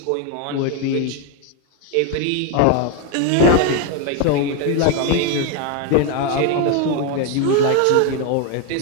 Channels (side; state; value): both; different; correlation 0.02